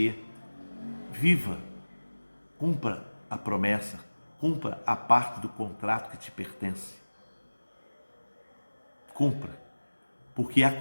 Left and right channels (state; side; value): inverted; both; correlation -1.00